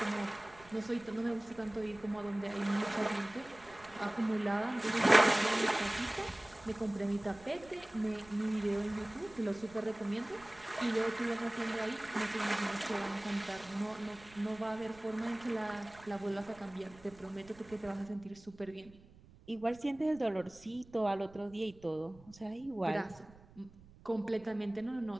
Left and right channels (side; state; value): right; noise; rumble, 23 dB below the sound